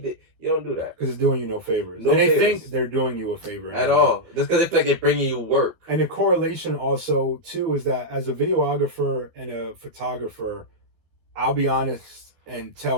You don't do that. Because it's doing you no favors. And they think they're doing you a favor. At all. Just because they feel like they're bringing you work. And the correlation also, too, is that as a videographer and a photographer, I'll be honest and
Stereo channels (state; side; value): late; left; 12 ms